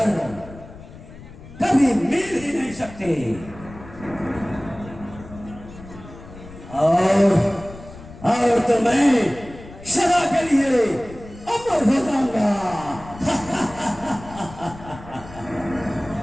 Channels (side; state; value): left; noise; rumble, 17 dB below the sound